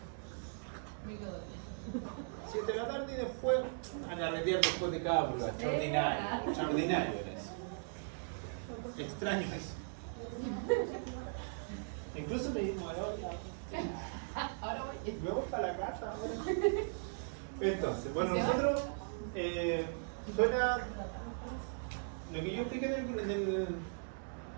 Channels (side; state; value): left; silent; digital silence